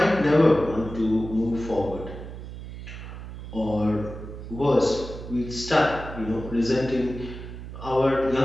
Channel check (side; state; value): right; noise; hum, 11 dB below the sound